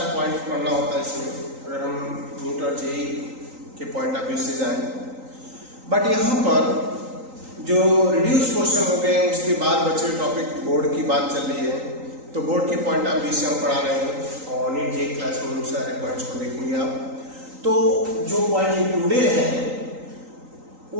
पॉइंट पढ़ना होता है इसमें अगर हम नीट और जेई के पॉइंट ऑफ व्यू से जाएं। बट यहाँ पर जो रिड्यूस क्वेश्चन हो गए उसके बाद बचे टॉपिक बोर्ड की बात चल रही है, तो बोर्ड के पॉइंट ऑफ व्यू से हम पढ़ा रहे हैं और नीट जेई क्लास में उन सारे पॉइंट्स को देखेंगे आप। तो जो पॉइंट इंक्लूडेड है वो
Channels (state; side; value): late; left; 3.9 ms